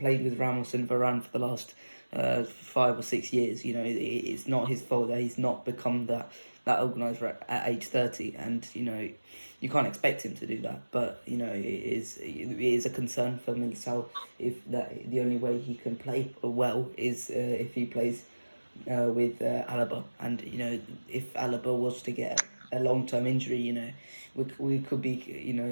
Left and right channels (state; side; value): inverted; both; correlation -1.00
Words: with Ramos and Varane for the last 5 or 6 years. You know, it's not his fault that he's not become that organizer at age 30, and you know, you can't expect him to do that. But you know, it is a concern for Militao if that the only way he can play well is if he plays with Alaba, and you know, if Alaba was to get a long-term injury, you know, we could be, you